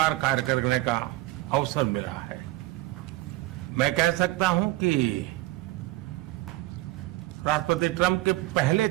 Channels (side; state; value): left; quieter; 18.2 dB